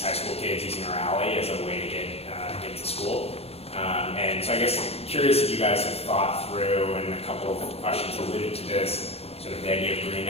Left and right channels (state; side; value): late; right; 0.29 ms